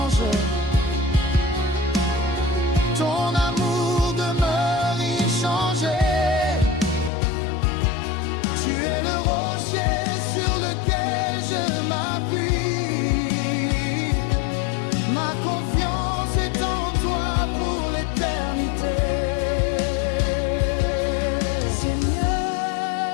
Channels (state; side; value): drops out; right; at 7.1 s